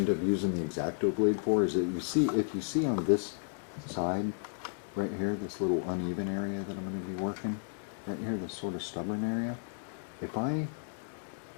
up using the X-Acto blade for is that if you see on this side, right here, this little uneven area that I'm going to be working, right here, this sort of stubborn area, if I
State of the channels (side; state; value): right; silent; digital silence